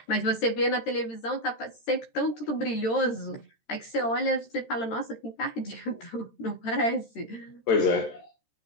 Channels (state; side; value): late; right; 13 ms